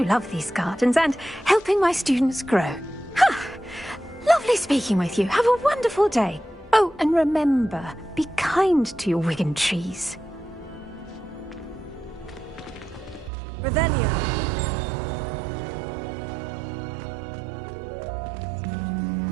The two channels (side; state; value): left; drops out; at 13.3 s